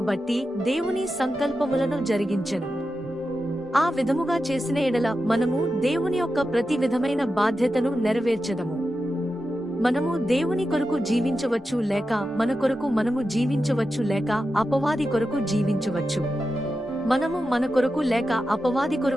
బట్టి దేవుని సంకల్పములను జరిగించెను. ఆ విధముగా చేసిన ఎడల మనము దేవుని యొక్క ప్రతి విధమైన బాధ్యతను నెరవేర్చదము. మనము దేవుని కొరకు జీవించవచ్చు లేక మన కొరకు మనము జీవించవచ్చు లేక అపవాది కొరకు జీవించవచ్చు. మనము మన కొరకు లేక అపవాది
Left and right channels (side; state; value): both; normal; correlation 0.90